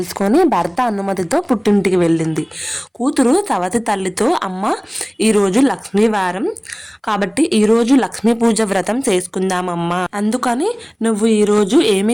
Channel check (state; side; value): identical; both; correlation 1.00